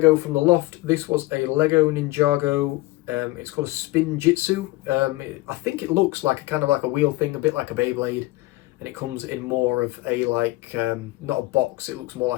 from the loft. This was a Lego Ninjago. It's called a Spin Jitsu. I think it looks like a wheel thing, a bit like a Beyblade. And it comes in more of a not a box, it looks more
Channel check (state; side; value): quieter; right; 19.4 dB